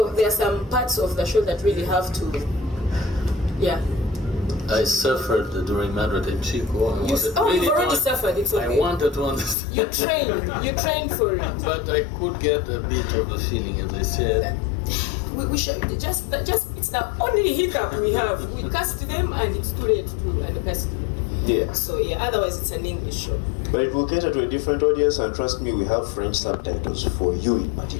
there are some parts of the show that really have to, yeah. I suffered during Madrid and Chico. You've already suffered. It's okay. I wanted to understand. You trained for it. But I could get a bit of the feeling, as I said. We should just it's the only hiccup we have. We cast them and it's too late to uncast them. Yeah. So yeah, otherwise it's an English show. But it will cater to a different audience, and trust me, we have French subtitles for you in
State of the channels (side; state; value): right; drops out; at 9.6 s